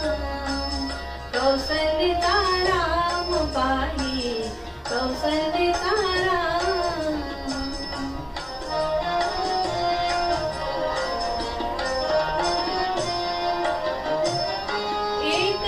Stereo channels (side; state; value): both; identical; correlation 1.00